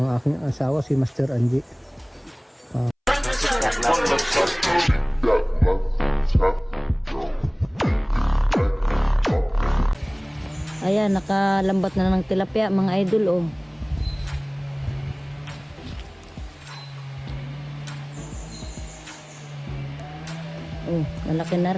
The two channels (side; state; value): both; identical; correlation 1.00